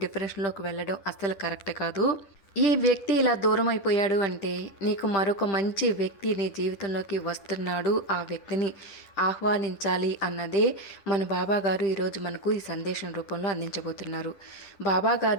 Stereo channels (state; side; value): late; right; 10 ms